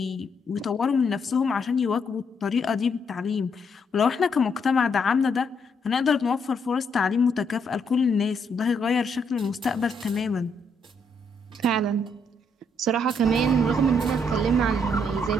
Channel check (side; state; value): both; normal; correlation 0.74